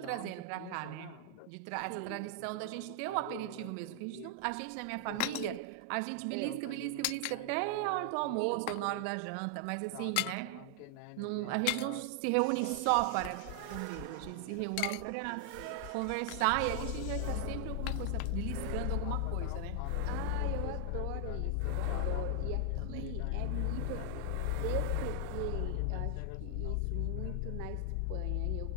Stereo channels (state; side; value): different; both; correlation 0.00